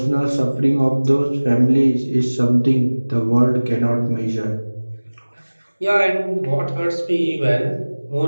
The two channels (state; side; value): inverted; both; correlation -1.00